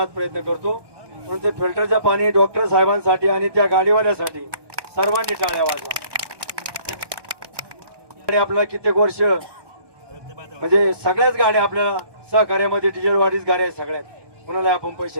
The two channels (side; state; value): left; late; 1.2 ms